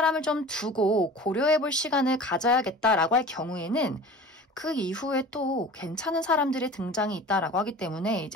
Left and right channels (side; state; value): both; normal; correlation 0.39